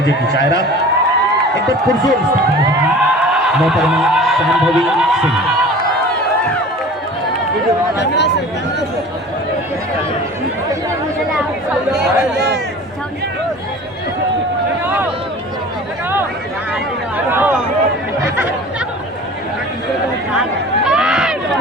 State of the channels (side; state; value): both; normal; correlation 0.41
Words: की शायरा, एक बार पुरजोर मोहतरमा शांभवी सिंह।